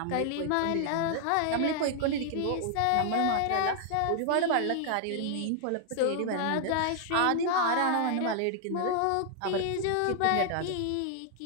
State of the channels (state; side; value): different; both; correlation 0.00